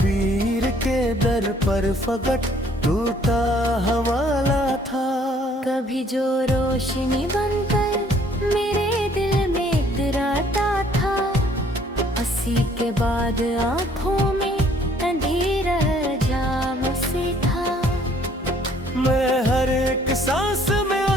के दर पर फकट टूटा हवाला था। कभी जो रोशनी बनकर मेरे दिल में हंसी के बाद आंखों में अंधेरा जाम से था। मैं हर एक सांस में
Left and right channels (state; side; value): normal; both; correlation 0.60